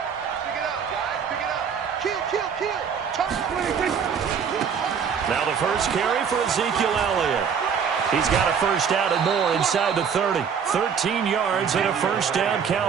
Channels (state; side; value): quieter; left; 7.0 dB